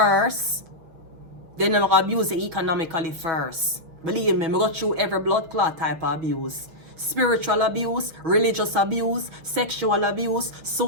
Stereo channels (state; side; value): late; left; 6.3 ms